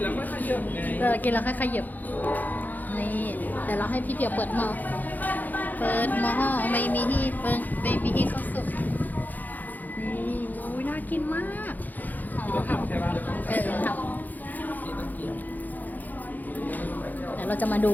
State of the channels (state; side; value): late; right; 0.083 ms